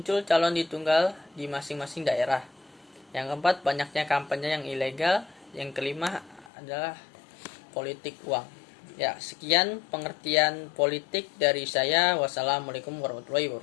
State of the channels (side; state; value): right; drops out; at 6.5 s